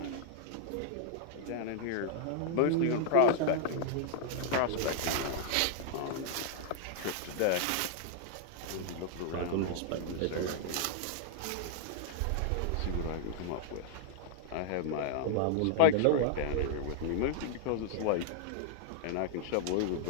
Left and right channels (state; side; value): different; both; correlation 0.00